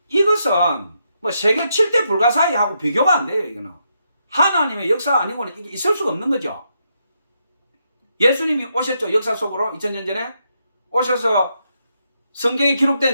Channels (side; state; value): both; inverted; correlation -0.80